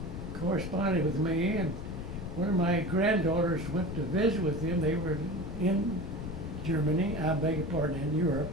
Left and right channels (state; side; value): noise; left; rumble, 7 dB below the sound